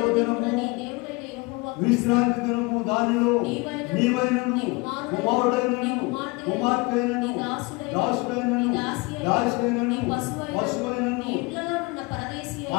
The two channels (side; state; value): right; quieter; 26.1 dB